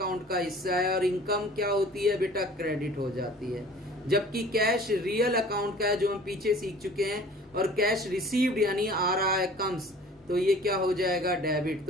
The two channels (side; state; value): both; normal; correlation 0.47